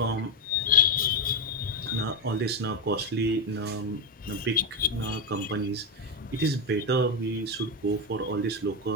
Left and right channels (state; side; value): normal; both; correlation 0.08